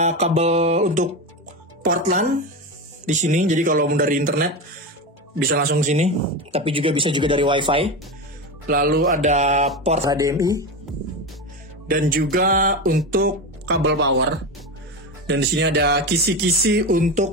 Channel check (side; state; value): both; normal; correlation 0.19